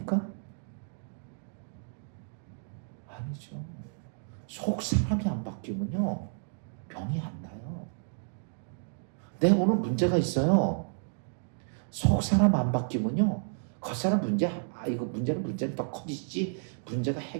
아니죠. 속 사람이 안 바뀌면요, 병이 안 나요. 내가 오늘 문제가 있어요. 속 사람 안 바뀌면요, 겉사람 이거 문제는 더 커지지 문제가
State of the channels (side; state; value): left; silent; digital silence